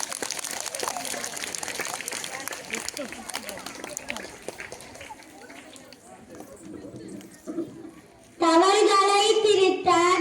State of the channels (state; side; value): identical; both; correlation 1.00